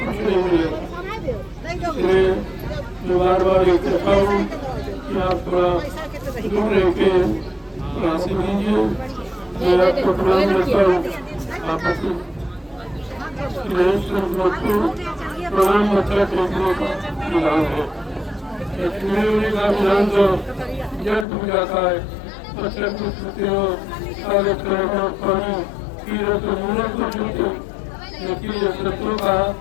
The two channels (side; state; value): right; drops out; at 21.2 s